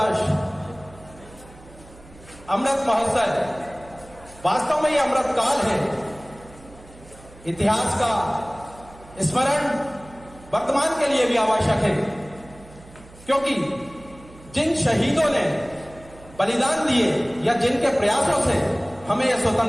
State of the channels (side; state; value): right; noise; hum, 22 dB below the sound